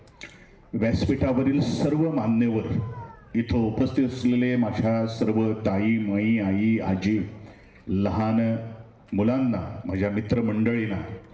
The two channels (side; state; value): both; identical; correlation 1.00